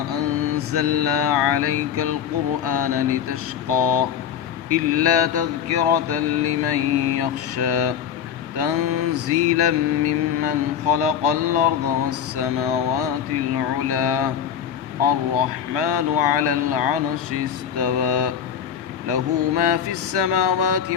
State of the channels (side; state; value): right; quieter; 8.7 dB